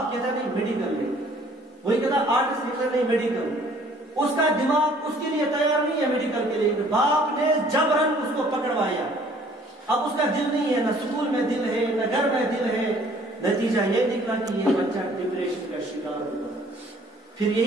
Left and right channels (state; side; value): normal; both; correlation 0.57